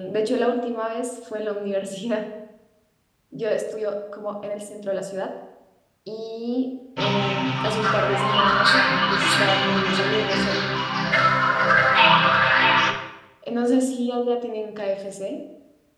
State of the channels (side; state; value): both; identical; correlation 1.00